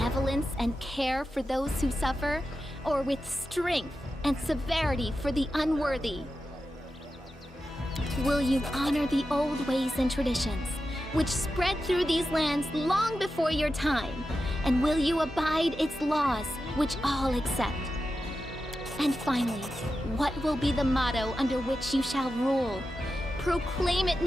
and care for those who suffer, or with strength and severity for the unworthy? Will you honor the old ways and traditions, which spread through these lands long before your time? And will you abide its laws, which all accept? And finally, what will be the motto under which you shall rule? Proclaim it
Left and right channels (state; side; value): normal; both; correlation 0.91